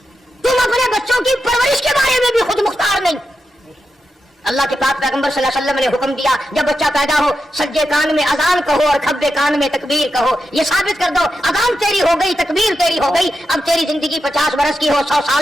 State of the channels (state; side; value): normal; both; correlation 0.88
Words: تم اپنے بچوں کی پرورش کے بارے میں بھی خود مختار نہیں. اللہ کے پاک پیغمبر صلی اللہ علیہ وسلم نے حکم دیا جب بچہ پیدا ہو سجے کان میں اذان کہو اور کھبے کان میں تکبیر کہو. یہ ثابت کر دو اذان تیری ہو گئی، تکبیر تیری ہو گئی. اب تیری زندگی 50 برس کی ہو، 100